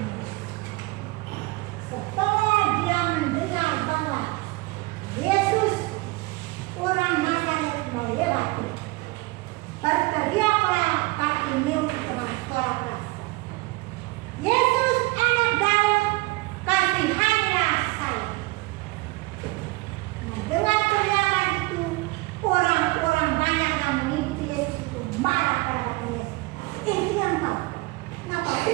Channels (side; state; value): left; quieter; 22.7 dB